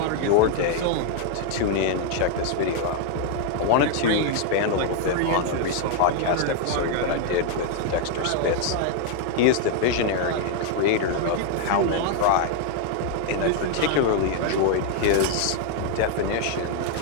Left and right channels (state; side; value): different; both; correlation 0.00